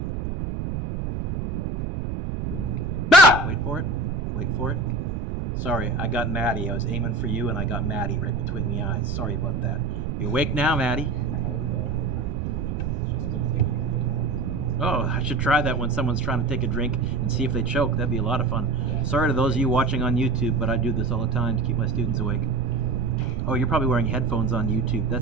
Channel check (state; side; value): noise; right; rumble, 3 dB below the sound